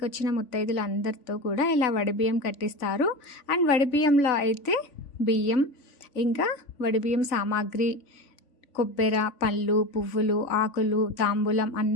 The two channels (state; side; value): late; right; 3.5 ms